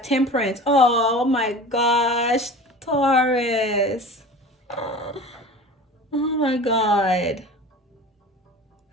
Oh my gosh. Taurus. Oh my God.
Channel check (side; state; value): both; normal; correlation 0.37